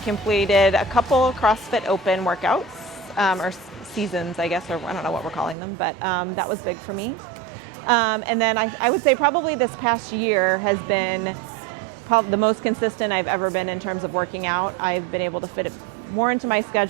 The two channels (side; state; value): left; drops out; at 5.6 s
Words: completed a couple CrossFit Open workouts, or seasons, I guess, or I don't know what we're calling them, but that was big for me. And then I would say probably this past year has been probably the most consistent I've ever been in terms of working out. I've been able to fit it more into my